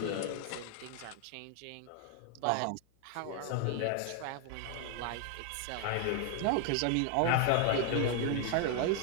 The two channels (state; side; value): different; both; correlation 0.00